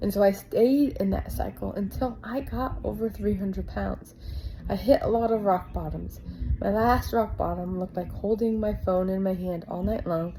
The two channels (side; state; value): both; identical; correlation 1.00